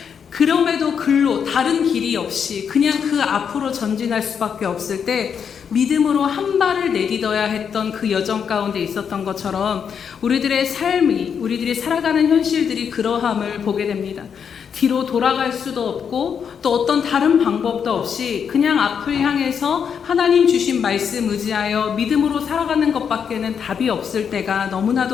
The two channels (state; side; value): quieter; right; 7.2 dB